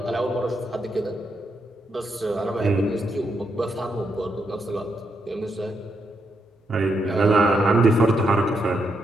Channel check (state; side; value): normal; both; correlation 0.80